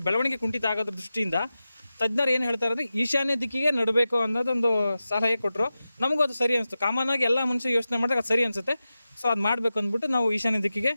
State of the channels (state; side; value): inverted; both; correlation -0.93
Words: ಬೆಳವಣಿಗೆ ಕುಂಠಿತ ಆಗೋದ್ರ ದೃಷ್ಟಿಯಿಂದ ತಜ್ಞರು ಏನು ಹೇಳ್ತಾರೆ ಅಂದರೆ ಈಶಾನ್ಯ ದಿಕ್ಕಿಗೆ ನಡಬೇಕು ಅನ್ನೋದೊಂದು ಸಲಹೆ ಕೊಟ್ಟರು. ನಮಗೂ ಅದು ಸರಿ ಅನಿಸ್ತು. ಕಾಮನ್ ಆಗಿ ಎಲ್ಲ ಮನುಷ್ಯ ಯೋಚನೆ ಮಾಡಿದಾಗ ಅದು ಸರಿ ಅನಿಸುತ್ತೆ. ಸೊ ಅದು ಮಾಡಬೇಕು ಅಂದ್ಬಿಟ್ಟು ನಾವು ಈಶಾನ್ಯ ದಿಕ್ಕಿಗೆ